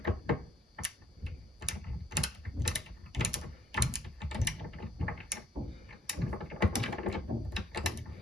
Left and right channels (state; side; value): normal; both; correlation 0.60